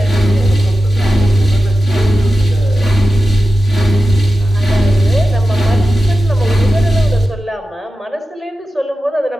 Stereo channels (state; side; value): normal; both; correlation 0.93